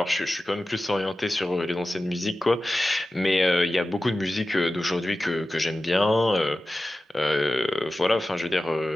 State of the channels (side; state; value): both; normal; correlation 0.95